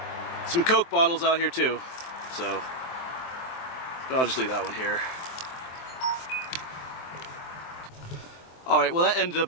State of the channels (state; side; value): late; right; 23 ms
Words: some Coke bottles out here too. So, but I'll just leave that one here. Alright, well that ended